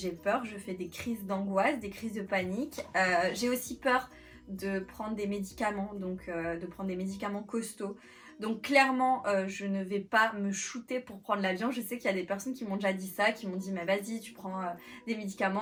peur, je fais des crises d'angoisse, des crises de panique. J'ai aussi peur de prendre des médicaments, donc de prendre des médicaments costauds. Donc clairement, je ne vais pas me shooter pour prendre l'avion. Je sais qu'il y a des personnes qui m'ont déjà dit ça, qui m'ont dit mais vas-y, tu prends des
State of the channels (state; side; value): identical; both; correlation 1.00